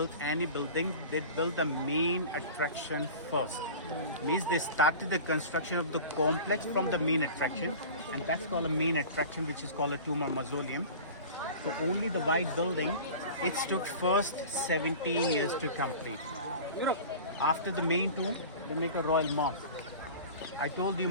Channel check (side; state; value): both; inverted; correlation -0.37